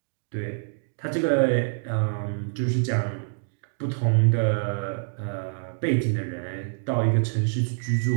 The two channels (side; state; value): left; silent; digital silence